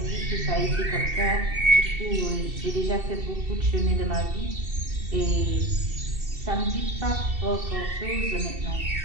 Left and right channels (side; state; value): left; late; 2.7 ms